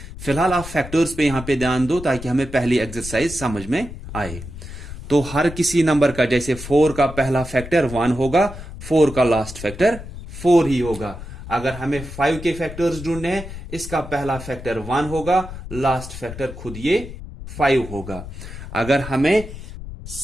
फिलहाल आप फैक्टर्स पे यहां पे ध्यान दो ताकि हमें पहली एक्सरसाइज समझ में आए। तो हर किसी नंबर का, जैसे 4 का पहला फैक्टर 1 होगा, 4 का लास्ट फैक्टर 4 ही होगा। अगर हमें 5 के फैक्टर्स ढूंढने हैं, इसका पहला फैक्टर 1 होगा, लास्ट फैक्टर खुद ये 5 होगा। अगर हमें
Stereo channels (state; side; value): noise; left; rumble, 12 dB below the sound